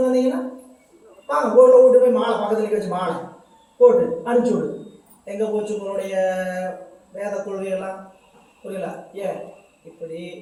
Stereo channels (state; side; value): identical; both; correlation 1.00